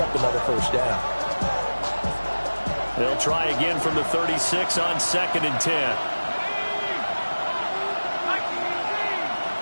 up another first down. They'll try again from the 36 on 2nd and 10.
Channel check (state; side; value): inverted; both; correlation -1.00